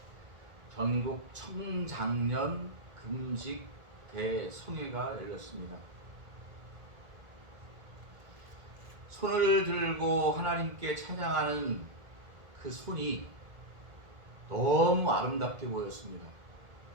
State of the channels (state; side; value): late; left; 1.8 ms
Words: 전국 청장년 금식 대성회가 열렸습니다. 손을 들고 하나님께 찬양하는 그 손이 너무 아름답게 보였습니다.